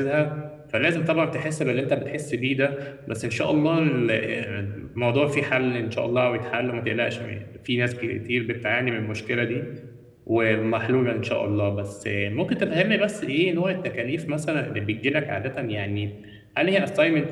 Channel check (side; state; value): both; identical; correlation 1.00